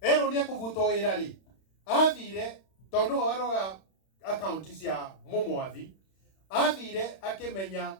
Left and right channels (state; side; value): late; right; 31 ms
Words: Erwo nĩ ekũbutwo wĩra rĩ, athire, tondũ no arora account cia mũmwathi, athire akĩmenya